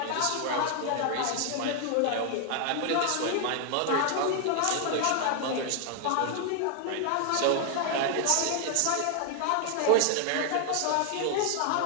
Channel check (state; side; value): different; both; correlation 0.00